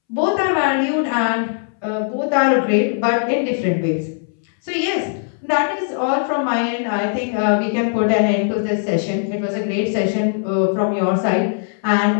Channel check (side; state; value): right; silent; 66 dB below the other